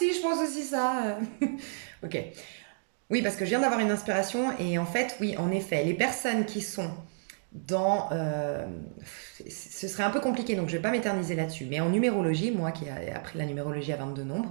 je pense aussi ça. Ok. Oui, parce que je viens d'avoir une inspiration et en fait, oui, en effet, les personnes qui sont dans... ce serait un peu compliqué, donc je vais pas m'éterniser là-dessus. Mais en numérologie, moi qui ai appris la numérologie à 22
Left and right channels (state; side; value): silent; left; digital silence